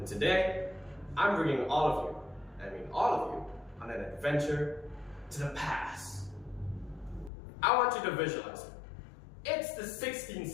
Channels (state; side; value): drops out; right; at 7.3 s